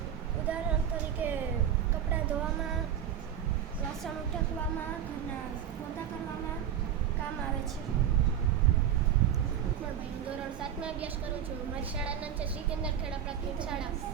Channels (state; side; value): quieter; left; 9.6 dB